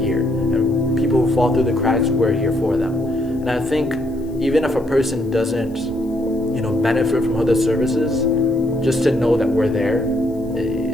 And people who fall through the cracks, we're here for them. And I think even if a person doesn't, benefit from HUDA services, just to know that we're there,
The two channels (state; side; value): noise; left; hiss, 30 dB below the sound